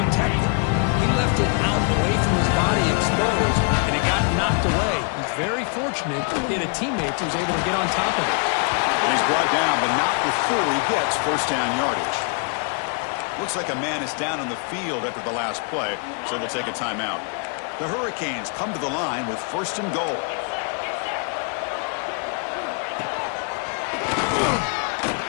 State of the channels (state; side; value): quieter; right; 39.0 dB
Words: it. He left it out away from his body exposed, and it got knocked away. He's very fortunate he had a teammate who was able to get on top of it. He's brought down, but not before he gets first down yardage. Looks like a man is down on the field after the last play, so they'll take a timeout. The Hurricanes come to the line with 1st and goal.